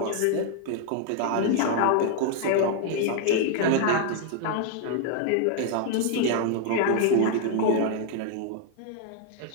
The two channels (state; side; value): different; both; correlation 0.00